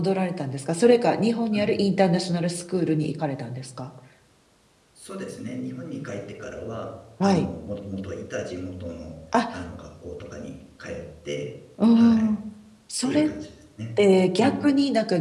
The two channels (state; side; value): identical; both; correlation 1.00